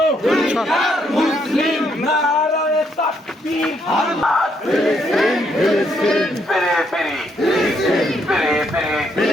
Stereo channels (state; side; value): normal; both; correlation 0.73